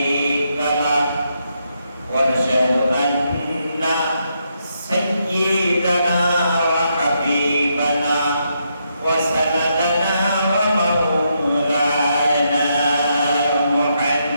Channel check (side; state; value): both; inverted; correlation -0.79